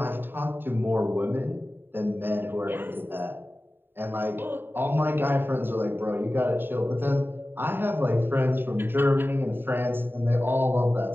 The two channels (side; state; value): left; late; 0.097 ms